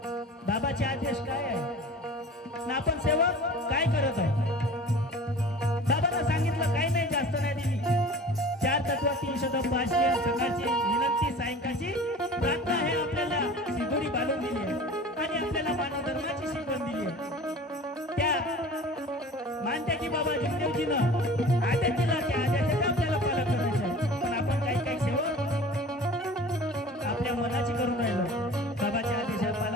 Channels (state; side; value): normal; both; correlation 0.41